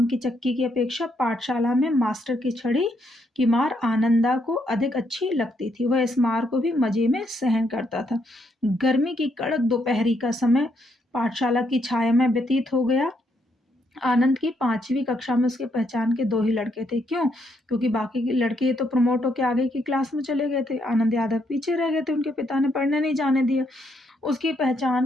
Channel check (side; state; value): both; normal; correlation 0.75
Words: की चक्की की अपेक्षा पाठशाला में मास्टर की छड़ी की मार आनंदा को अधिक अच्छी लगती थी। वह इस मार को भी मजे में सहन करता था। गर्मी की कड़क दोपहरी का समय पाठशाला की छाया में व्यतीत हो गया। आनंद की 5वीं कक्षा में उसके पहचान के 2 ही लड़के थे। क्यों? क्योंकि बाकी के लड़के तो प्रमोट होकर आगे की क्लास में चले गए थे। आनंद यादव पीछे रह गए थे, उनके पिता ने पढ़ने नहीं जाने दिया। उसकी